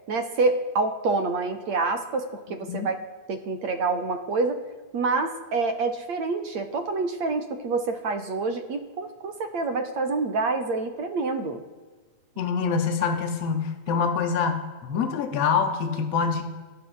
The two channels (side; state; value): left; late; 8.7 ms